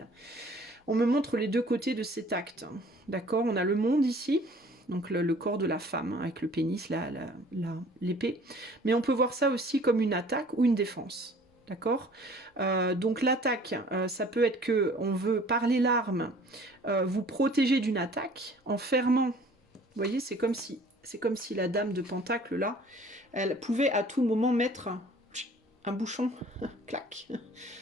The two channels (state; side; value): normal; both; correlation 0.52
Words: On me montre les deux côtés de cet acte. D'accord? On a le monde ici, donc le corps de la femme, avec le pénis, l'épée. Mais on peut voir ça aussi comme une attaque ou une défense. D'accord? Donc l'attaque, ça peut être que on veut, par les larmes, vous protéger d'une attaque en fermant. Vous voyez, c'est comme si la dame de Pentacle, là, elle pouvait à tout moment mettre un bouchon. Clac.